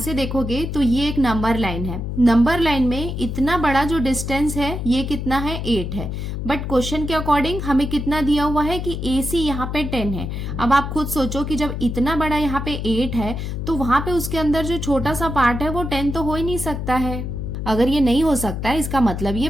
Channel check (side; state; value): left; noise; hum, 4 dB below the sound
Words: देखोगे तो ये एक नंबर लाइन है। नंबर लाइन में इतना बड़ा जो डिस्टेंस है ये कितना है 8 है, बट क्वेश्चन के अकॉर्डिंग हमें कितना दिया हुआ है कि ए सी यहाँ पे 10 है। अब आप खुद सोचो कि जब इतना बड़ा यहाँ पे 8 है तो वहां पे उसके अंदर जो छोटा सा पार्ट है वो 10 तो हो ही नहीं सकता है। अगर ये नहीं हो सकता है इसका मतलब ये